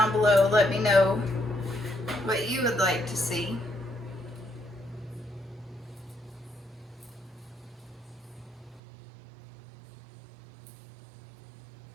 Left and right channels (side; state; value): left; drops out; at 8.8 s